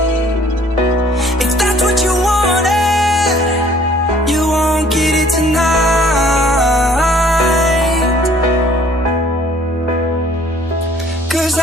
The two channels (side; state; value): both; normal; correlation 0.57